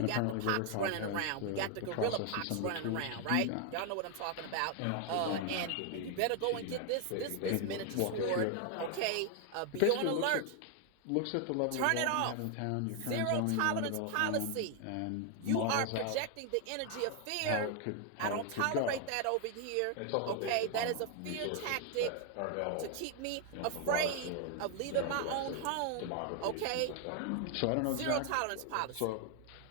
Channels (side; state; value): both; different; correlation 0.00